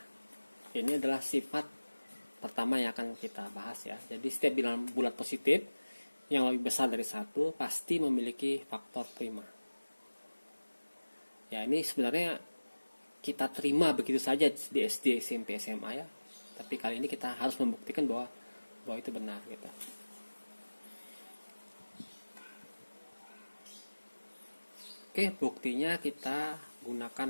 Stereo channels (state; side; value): inverted; both; correlation -1.00